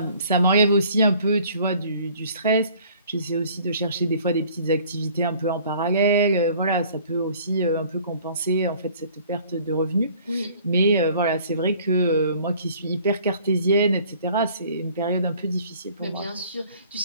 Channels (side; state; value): both; inverted; correlation -0.54